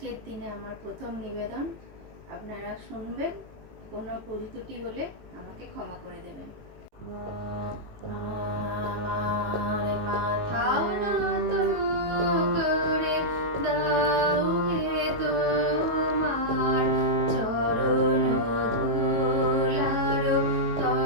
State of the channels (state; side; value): late; left; 18 ms